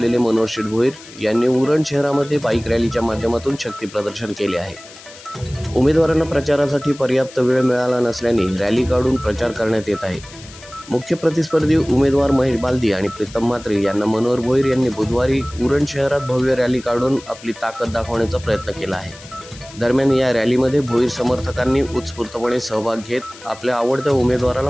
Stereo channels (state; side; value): noise; left; hiss, 19 dB below the sound